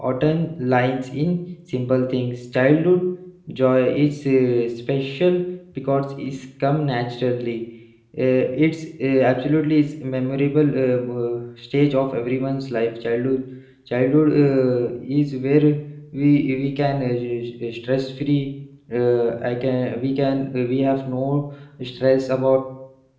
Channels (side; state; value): both; identical; correlation 1.00